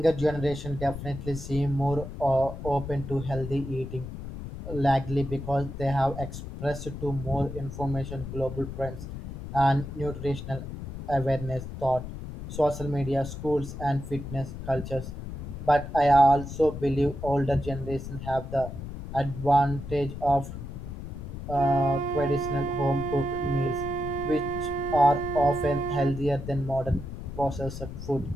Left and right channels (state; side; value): noise; left; rumble, 9 dB below the sound